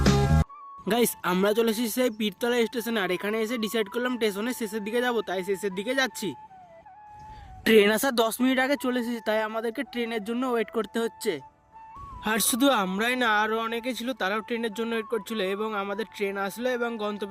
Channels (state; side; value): identical; both; correlation 1.00